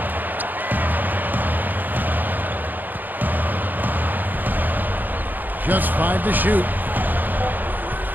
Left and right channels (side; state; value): left; late; 0.086 ms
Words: Just 5 to shoot.